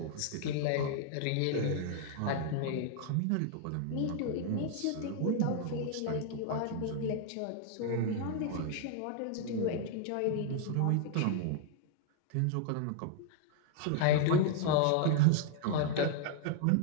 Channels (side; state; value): both; different; correlation 0.00